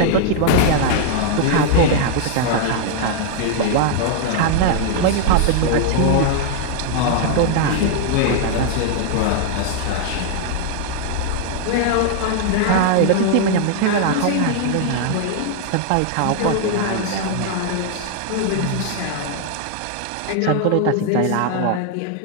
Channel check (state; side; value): different; both; correlation 0.00